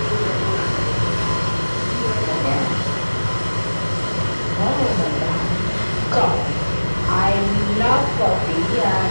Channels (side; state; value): both; inverted; correlation -1.00